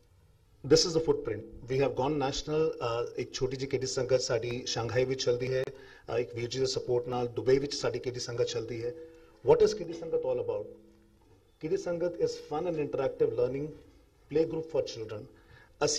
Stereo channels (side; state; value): both; identical; correlation 1.00